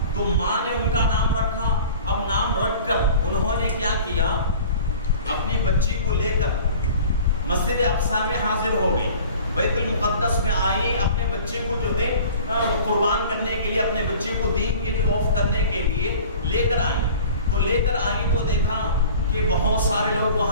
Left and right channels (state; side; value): inverted; both; correlation -0.44